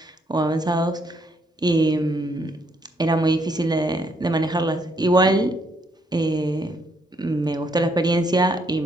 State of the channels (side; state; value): both; normal; correlation 0.72